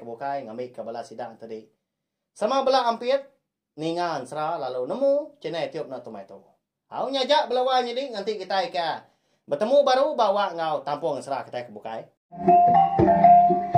bukai ngambil ke belah sidang tadi. Sama belah ampit ninga ansra lalu nemu channel tiup na tumai tu. Au nyajak belawan jadi nanti kita ke bertemu baru bawa ngau tampung ansra kita ke bukai.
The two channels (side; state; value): both; identical; correlation 1.00